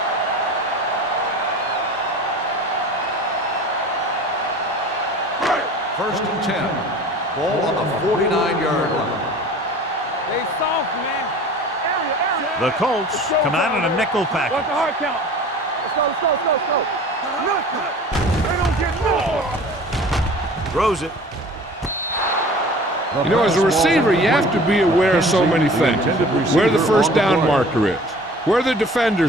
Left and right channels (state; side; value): normal; both; correlation 0.43